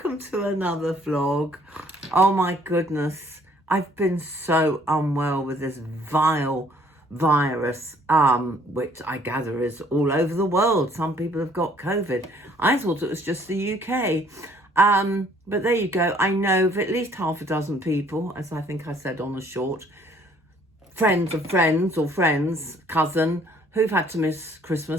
to another vlog. Oh my goodness, I've been so unwell with this vile virus, which I gather is all over the world. Some people have got COVID. I thought it was just the UK. But there you go. I know of at least half a dozen people, as I think I said on the short, friends of friends or friends, cousin, who've had to miss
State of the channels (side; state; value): both; normal; correlation 0.60